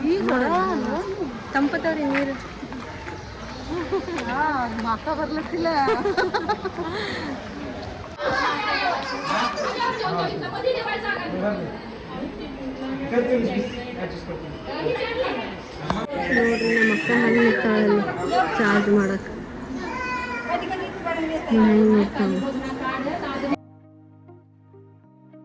ತಂಪದವ್ರಿ ನೀರು ಮಾತಾ ಬರ್ಲತ್ತಿಲ್ಲ. ನೋಡ್ರಿ ನಮ್ಮ ಅಕ್ಕ ಹಣ್ಣು ಇರ್ತಾಳಲ್ಲಿ ಚಾರ್ಜ್ ಮಾಡಕ್ಕೆ.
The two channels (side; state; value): both; identical; correlation 1.00